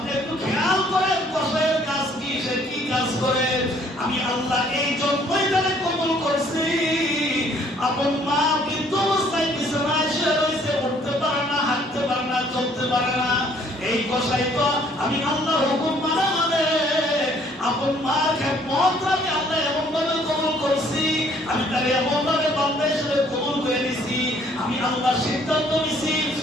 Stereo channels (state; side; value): normal; both; correlation 0.61